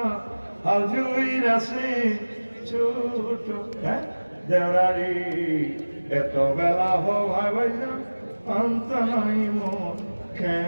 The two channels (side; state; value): both; inverted; correlation -1.00